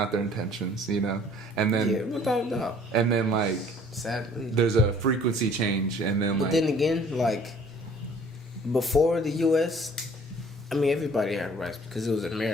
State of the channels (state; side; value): normal; both; correlation 0.55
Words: their intentions, you know? And then, Yeah, without a doubt. and then like, Sadly. there's a frequency change, and then But like, then again, like, before the U.S., I mean, everybody had rights because it was